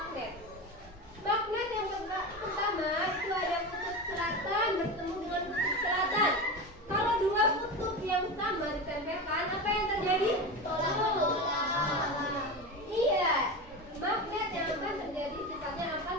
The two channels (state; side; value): normal; both; correlation 0.24